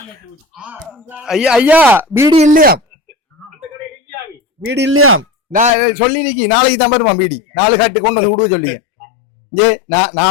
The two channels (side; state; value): right; drops out; at 5.7 s